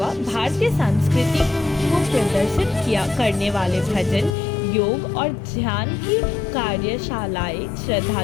भारतीय संस्कृति को प्रदर्शित करने वाले भजन, योग और ध्यान की कार्यशालाएं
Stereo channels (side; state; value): right; drops out; at 4.3 s